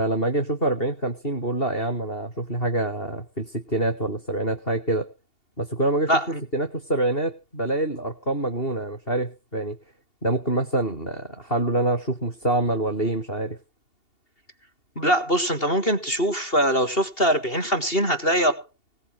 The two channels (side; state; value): right; late; 2.8 ms